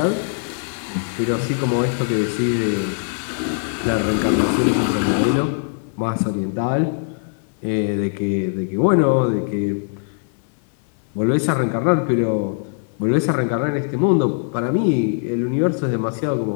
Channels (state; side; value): silent; right; 59 dB below the other